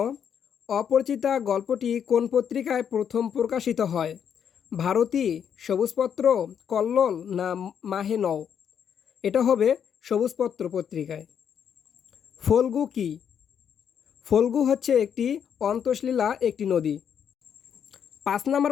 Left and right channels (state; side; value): quieter; right; 8.1 dB